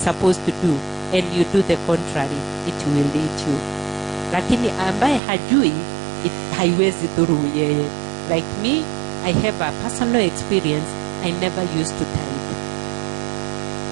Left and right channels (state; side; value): drops out; left; at 5.2 s